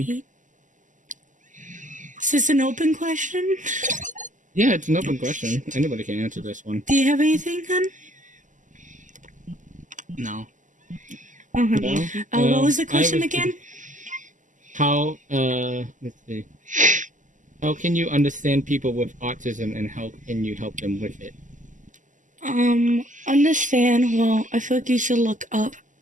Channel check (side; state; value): left; late; 0.37 ms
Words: Is this an open question? Yeah, it's an open question. Anybody can answer this one. Do you have anything, hun? No. Okay. No. What was the I question was again? how let's see. How can you understand people with autism and how can you help them with it? Understand. Well, I feel like you should look up